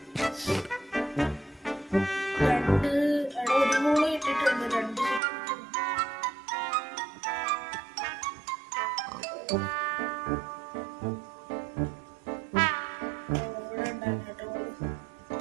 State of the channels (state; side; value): drops out; left; at 5.2 s